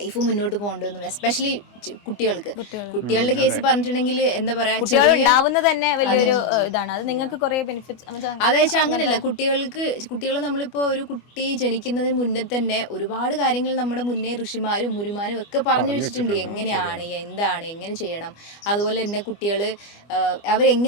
മുന്നോട്ട് പോകേണ്ടതെന്നും, എസ്പെഷ്യലി കുട്ടികളുടെ കേസ് പറഞ്ഞിട്ടുണ്ടെങ്കിൽ എന്താ പറയാ, തന്നെ വലിയൊരു ഇതാണ്. അത് നിങ്ങൾക്ക് കുറേ ബെനിഫിറ്റ്സ്. അതായത് അങ്ങനെയല്ല, കുട്ടികൾ നമ്മളിപ്പോൾ ഒരു കുട്ടി ജനിക്കുന്നതിന് മുന്നേ തന്നെ ഒരുപാട് കാര്യങ്ങൾ നമ്മുടെ മുന്നേ ഋഷിമാരും മുരുമാരും ഒക്കെ പറഞ്ഞു വെച്ചിട്ടുണ്ട്. എങ്ങനെയാണ്, എന്താണ്, എങ്ങനെ ചെയ്യണം, അതുപോലെ തന്നെ കുട്ടികൾ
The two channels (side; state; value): right; late; 25 ms